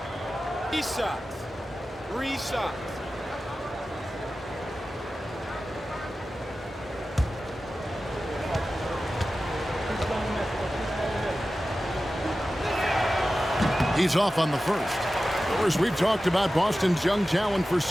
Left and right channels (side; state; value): both; normal; correlation 0.94